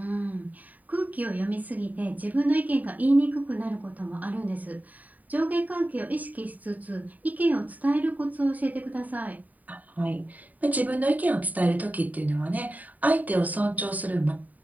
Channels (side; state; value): left; late; 0.076 ms